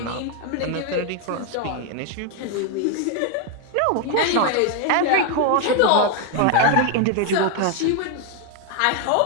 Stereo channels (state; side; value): different; both; correlation 0.01